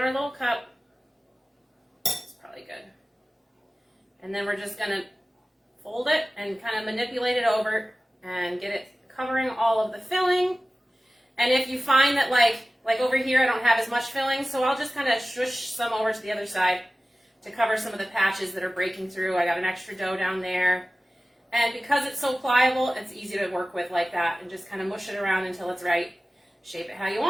our little cup. And then we're just going to fold it and kind of manipulate it over and get it covering all of the filling. And if you find that like over here I don't have as much filling, so I'll just kind of shush some over to the other side to cover some of the patches that are breaking through. I got an extra dough down there. And because it's so pliable, it's easy to work with like that, and just kind of mush it around until it's right. Shape it how you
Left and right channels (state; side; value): normal; both; correlation 0.96